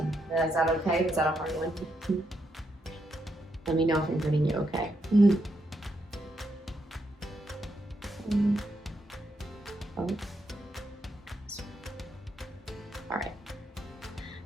Is that okay? Is that a hard one? Let me know if I'm hurting you, okay? Oh. All right.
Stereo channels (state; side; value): normal; both; correlation 0.80